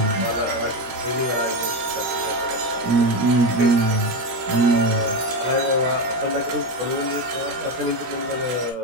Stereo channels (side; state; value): left; late; 17 ms